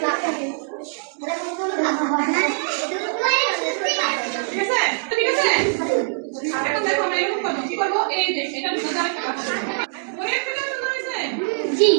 ঠিক আছে ঠিক আছে এখন দেখো আমরা এরকম করব কি করব এই যে এটা ভিতরে একটা কথা ওই একটা সুন্দর হয়েছে জি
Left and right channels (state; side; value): silent; left; digital silence